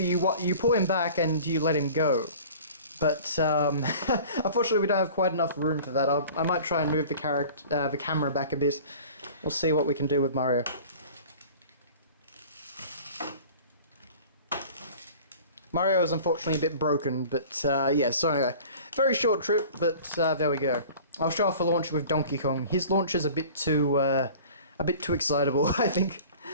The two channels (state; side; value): inverted; both; correlation -0.44